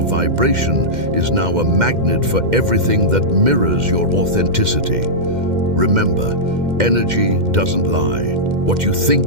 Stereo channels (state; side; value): late; left; 2.1 ms